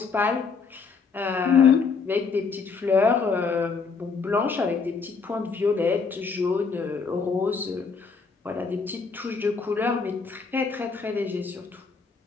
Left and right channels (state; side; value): quieter; right; 5.1 dB